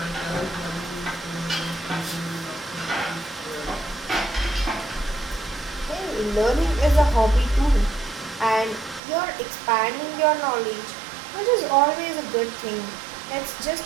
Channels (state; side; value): drops out; left; at 9.0 s